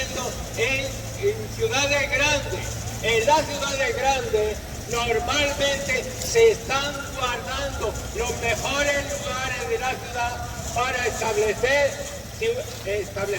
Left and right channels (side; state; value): both; identical; correlation 1.00